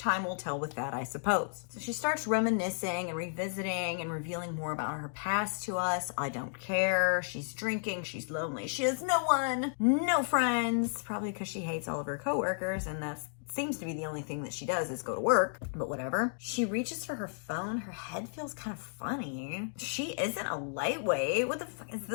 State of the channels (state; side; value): silent; right; digital silence